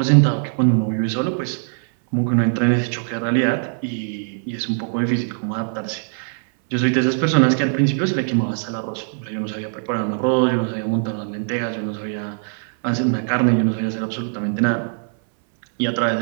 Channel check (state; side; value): silent; left; 61 dB below the other